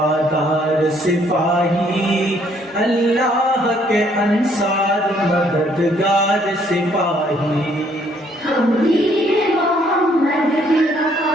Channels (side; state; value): both; normal; correlation 0.65